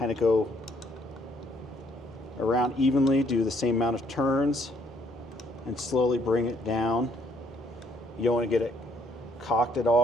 of go around evenly, do the same amount of turns, and slowly bring it down. You don't want to get it cocked at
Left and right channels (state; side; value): normal; both; correlation 0.66